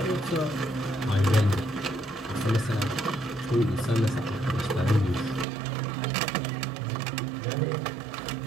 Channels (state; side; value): drops out; left; at 5.5 s